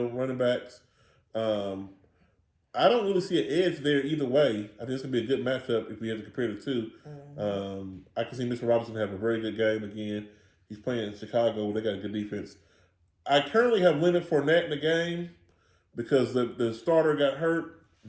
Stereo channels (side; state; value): both; identical; correlation 1.00